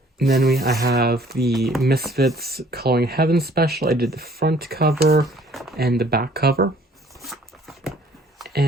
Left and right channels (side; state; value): both; normal; correlation 0.57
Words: And then I have the Misfits Coloring Heaven special. I did the front cover and the back cover.